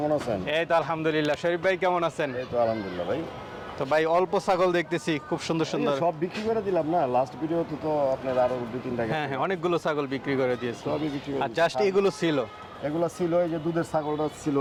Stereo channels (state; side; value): identical; both; correlation 1.00